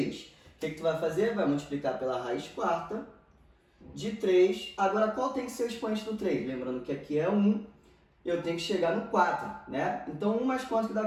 O que tu vai fazer? Vai multiplicar pela raiz quarta de 3. Agora, qual tem que ser o expoente do 3? Lembrando que aqui é 1, eu tenho que chegar no 4, né? Então, 1 mais quanto que dá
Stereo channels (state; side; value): identical; both; correlation 1.00